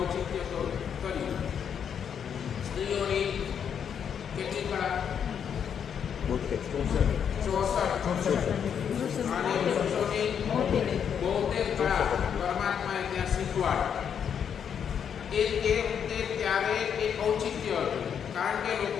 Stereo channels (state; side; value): quieter; right; 7.9 dB